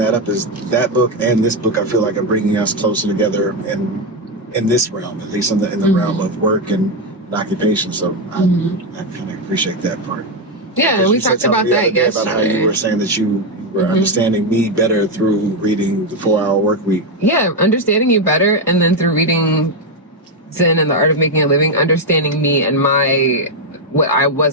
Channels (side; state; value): both; normal; correlation 0.05